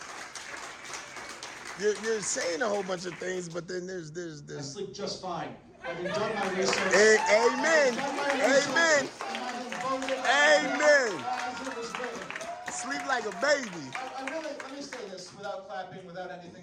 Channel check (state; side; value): identical; both; correlation 1.00